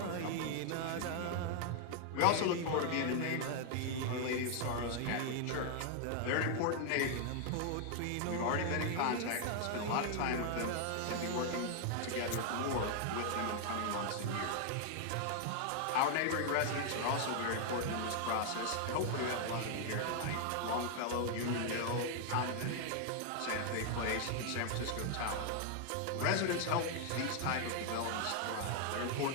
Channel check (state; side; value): different; both; correlation 0.00